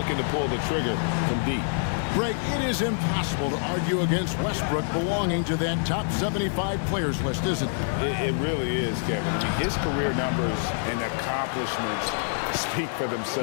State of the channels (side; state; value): right; silent; digital silence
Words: to pull the trigger from deep. Greg, it is impossible to argue against Westbrook belonging to that top 75 players list, isn't it? It really is, Kevin. I mean, his career numbers and accomplishments speak for